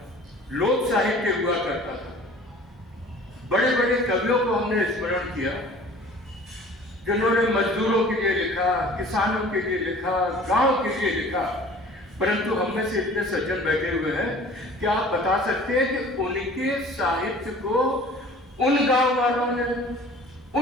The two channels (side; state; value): both; normal; correlation 0.47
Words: लोक साहित्य हुआ करता था। बड़े बड़े कवियों को हमने स्मरण किया जिन्होंने मजदूरों के लिए लिखा, किसानों के लिए लिखा, गांव के लिए लिखा। परंतु हम में से इतने सज्जन बैठे हुए हैं कि आप बता सकते हैं कि उनके साहित्य को उन गांव वालों ने,